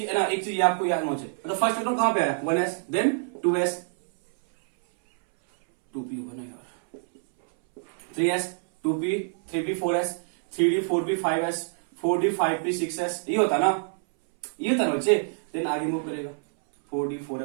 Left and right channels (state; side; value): silent; left; 61 dB below the other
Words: है ना, एक चीज आपको याद होना चाहिए। मतलब फर्स्ट इलेक्ट्रॉन कहां पे आया, 1s, देन 2s 2p होगा ना यार, 3s 2p 3p 4s 3d 4p 5s 4d 5p 6s, ये होता ना, ये होता ना बच्चे। देन आगे मूव करेगा 4d